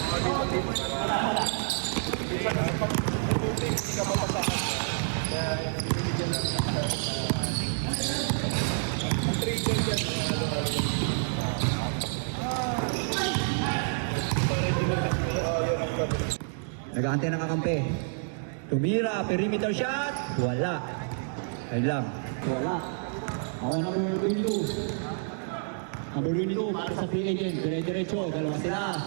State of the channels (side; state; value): left; silent; digital silence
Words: Nag-aantay ng kakampi. Tumira, perimeter shot. Wala. Ayun lang. Wala. Ako number 22. Number 22 para sa free agent. Dire-diretso. Dalawa sila.